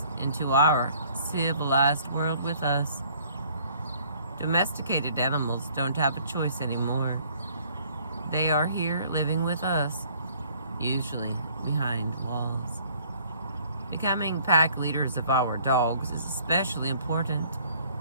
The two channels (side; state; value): both; inverted; correlation -0.58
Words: into our civilized world with us. Domesticated animals don't have a choice anymore. They are here living with us, usually behind walls. Becoming pack leaders of our dogs is especially important